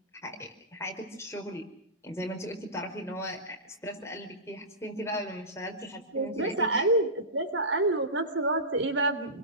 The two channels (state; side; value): normal; both; correlation -0.19